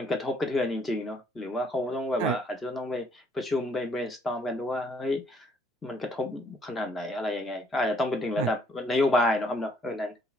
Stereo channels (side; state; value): both; normal; correlation 0.66